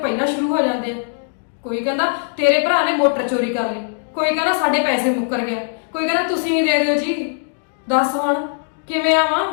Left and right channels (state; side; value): silent; right; digital silence